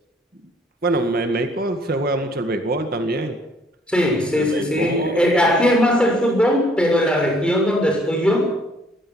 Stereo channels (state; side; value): normal; both; correlation 0.62